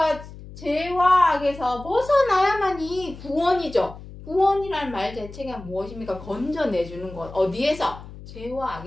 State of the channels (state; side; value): noise; left; hum, 15 dB below the sound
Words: 죄와 악에서 벗어나야만이 구원이죠. 구원이란 말 자체가 무엇입니까? 건져내주는 것. 어디에서? 죄와